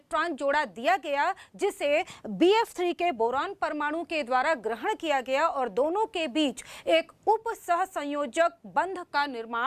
जोड़ा दिया गया जिसे BF3 के बोरॉन परमाणु के द्वारा ग्रहण किया गया, और दोनों के बीच एक उप सहसंयोजक बंध का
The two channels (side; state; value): both; identical; correlation 1.00